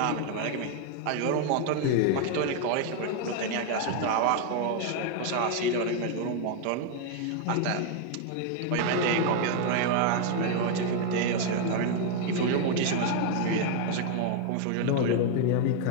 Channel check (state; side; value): different; both; correlation 0.01